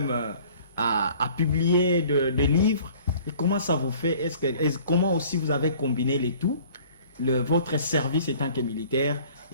à publier des livres. Et comment ça vous fait? Comment aussi vous avez combiné les tout, votre service étant que militaire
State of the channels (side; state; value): both; inverted; correlation -0.51